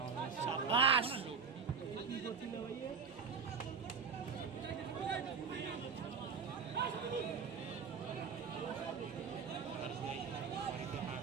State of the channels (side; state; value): left; quieter; 6.0 dB